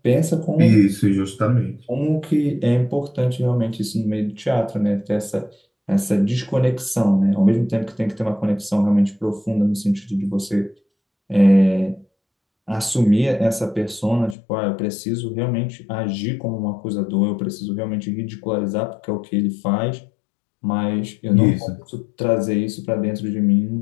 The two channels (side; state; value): right; drops out; at 14.4 s